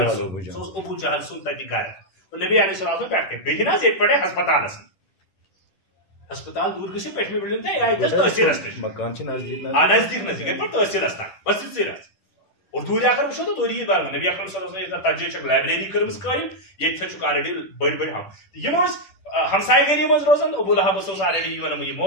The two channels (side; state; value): right; late; 10 ms